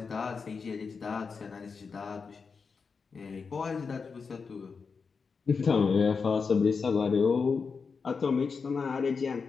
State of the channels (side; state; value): right; quieter; 5.2 dB